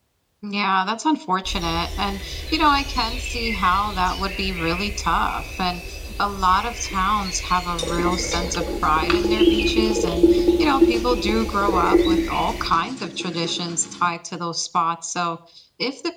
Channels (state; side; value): identical; both; correlation 1.00